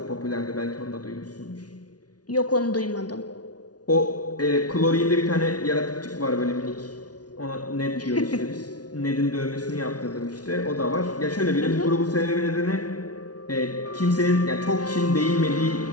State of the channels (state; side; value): late; right; 0.69 ms